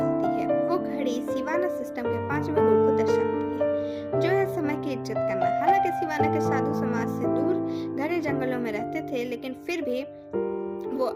है। वो घड़ी शिवाना सिस्टम के 5वें गुण को दर्शाती है, जो है समय की इज्जत करना। हालांकि शिवाना के साधु समाज से दूर घने जंगलों में रहते थे, लेकिन फिर भी वो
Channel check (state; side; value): identical; both; correlation 1.00